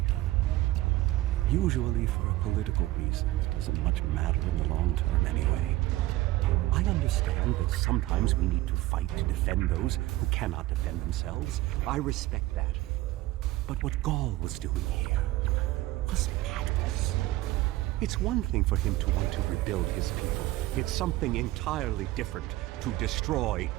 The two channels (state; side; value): quieter; left; 17.3 dB